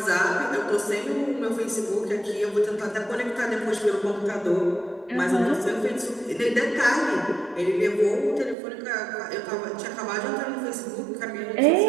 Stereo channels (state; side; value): drops out; left; at 8.6 s